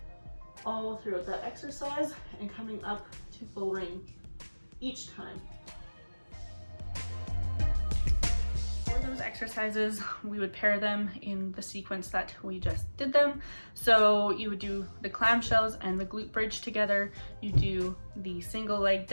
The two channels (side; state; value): both; inverted; correlation -1.00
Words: all throughout that exercise and coming up to full range each time. For those exercises, we would pair them in the sequence that we just did them. So you would do the clamshells and the glute bridge together. You do the single leg